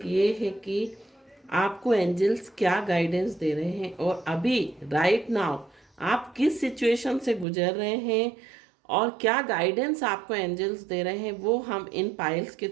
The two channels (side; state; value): left; drops out; at 7.5 s